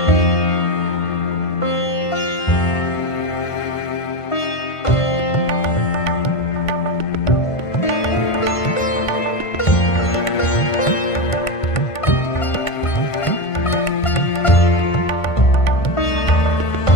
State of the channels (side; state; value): right; late; 1.5 ms